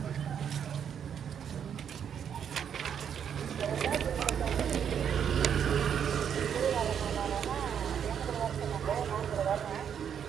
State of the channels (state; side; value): quieter; left; 8.2 dB